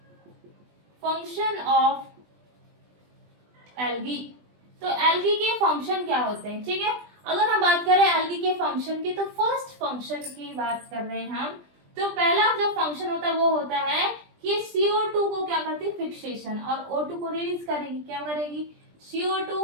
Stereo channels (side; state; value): left; late; 20 ms